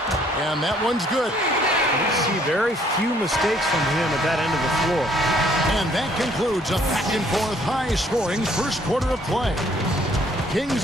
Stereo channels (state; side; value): normal; both; correlation 0.63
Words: and that one's good. You see very few mistakes from him at that end of the floor. And that concludes a back-and-forth high-scoring first quarter of play.